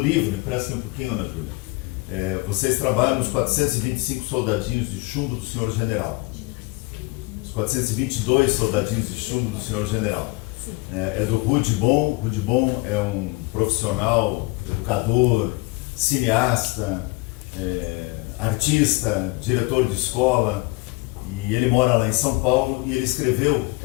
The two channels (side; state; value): right; quieter; 24.5 dB